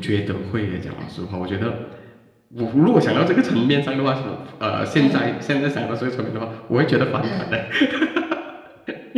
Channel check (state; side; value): identical; both; correlation 1.00